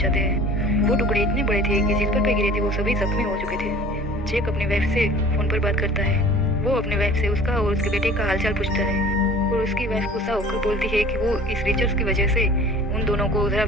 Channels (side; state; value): both; normal; correlation 0.46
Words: हैं। वो टुकड़े इतने बड़े थे कि जिस पर गिरे थे वो सभी जख्मी हो चुके थे। जैक अपनी वाइफ से फोन पर बात करता है। वो अपनी वाइफ से उसका और उसके बेटे का हालचाल पूछता है और उसकी वाइफ गुस्सा होकर बोलती है कि वो इस रिसर्च की वजह से उन दोनों को जरा